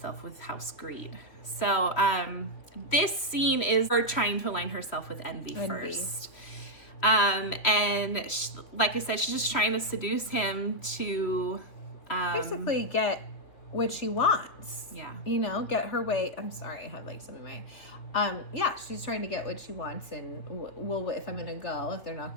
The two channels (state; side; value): late; right; 3.1 ms